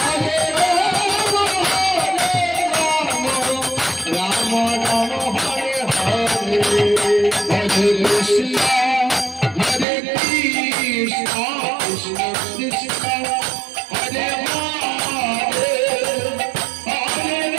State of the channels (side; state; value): left; drops out; at 9.9 s